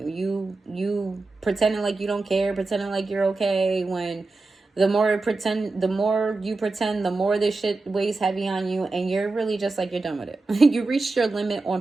You pretending like you don't care, pretending like you're okay, when the more you pretend, the more this shit weighs heavy on you, and you're really just like, you're done with it. You reached your limit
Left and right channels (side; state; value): left; quieter; 3.5 dB